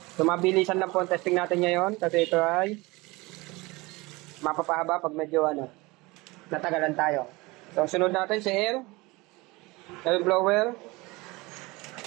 So mabilisan lang po ang testing natin ngayon kasi ito ay mapapahaba pag medyo natagalan tayo. So sunod natin si air blower.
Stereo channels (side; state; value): left; quieter; 23.1 dB